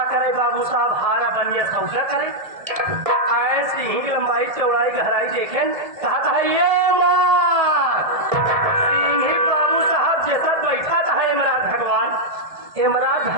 करे बाबू साहब, हारा बनिया सौदा करे। ऐसे ही लंबाई चौड़ाई गहराई देखें, कहा है ये मार सिंह ही बाबू साहब जैसा बैठा था इमरान भगवान। इमरान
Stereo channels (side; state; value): left; late; 1.8 ms